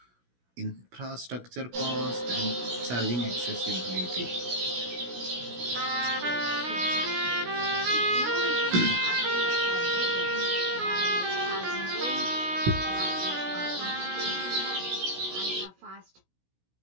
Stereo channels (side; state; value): left; late; 16 ms